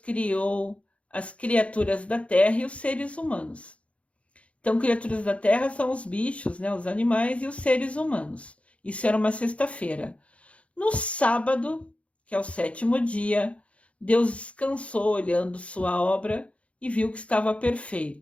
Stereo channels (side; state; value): right; late; 0.063 ms